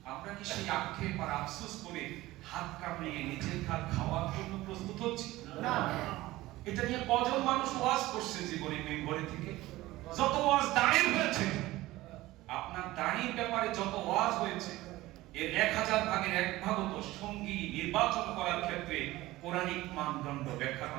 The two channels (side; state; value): left; quieter; 17.8 dB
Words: আমরা কি সেই আক্ষেপ আর আফসোস করে হাত কামড়িয়ে নিজের হাত খাওয়ার জন্য প্রস্তুত হচ্ছি? না। এটা নিয়ে কজন মানুষ ওয়াজ করছে জীবনে মেম্বরে থেকে? যত ওয়াজ দাঁড়িয়ে হয়েছে, আপনার দাঁড়ির ব্যাপারে যত ওয়াজ হয়েছে, এর 1000 ভাগের 1 ভাগও তো সঙ্গী নির্বাচন করার ক্ষেত্রে কোরআনিক মানদণ্ড ব্যাখ্যা